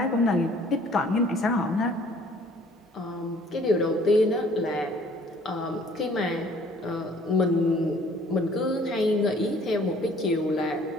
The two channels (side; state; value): both; normal; correlation 0.56